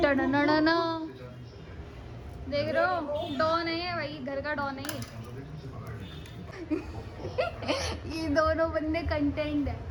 देख रहे हो, डॉन है ये भाई, घर का डॉन है ये दोनों बंदे कंटेंट है,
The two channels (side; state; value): both; identical; correlation 1.00